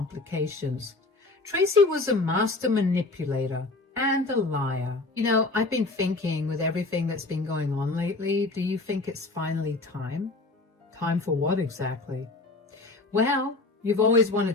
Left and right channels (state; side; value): quieter; right; 3.3 dB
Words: Tracy was a master manipulator and a liar. You know, I've been thinking with everything that's been going on lately, do you think it's finally time? Time for what exactly? Well, you've always